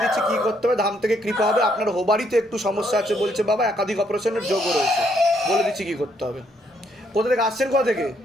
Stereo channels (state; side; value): normal; both; correlation 0.72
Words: দিচ্ছি কি করতে হবে। ধাম থেকে কৃপা হবে। আপনার হোবারিতে একটু সমস্যা আছে বলছে বাবা, একাধিক অপারেশনের যোগও রয়েছে। বলে দিচ্ছি কি করতে হবে। কোথা থেকে আসছেন? কোথা থেকে?